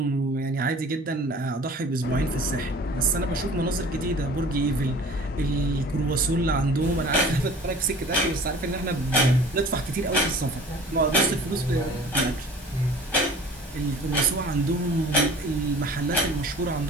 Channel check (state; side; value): normal; both; correlation 0.45